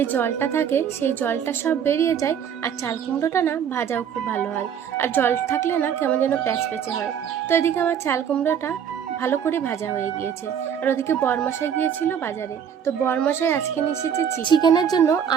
জলটা থাকে সেই জলটা সব বেরিয়ে যায়। আর চাল কুমড়োটা না ভাজাও খুব ভালো হয়, আর জল থাকলে না কেমন যেন প্যাচপ্যাচে হয়। তো এদিকে আমার চাল কুমড়োটা ভালো করে ভাজা হয়ে গিয়েছে। আর ওদিকে বরমশাই গিয়েছিল বাজারে, তো বরমশাই আজকে নিয়ে এসেছে চিকেনের জন্য।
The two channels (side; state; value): left; quieter; 8.3 dB